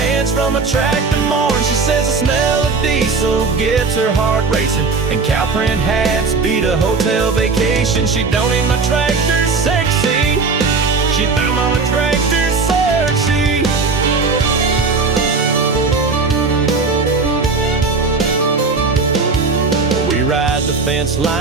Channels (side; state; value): left; quieter; 4.3 dB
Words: hands from a tractor morn. She says the smell of diesel gets her heart racing, and cow print hats beat a hotel vacation. She don't need my tractor sexy, she found my tractor sexy. We ride the fence